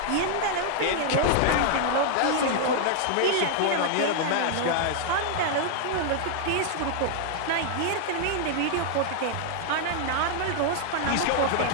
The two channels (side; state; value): both; different; correlation 0.00